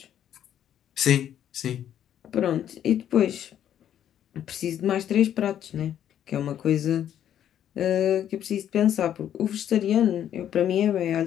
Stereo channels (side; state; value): right; quieter; 10.3 dB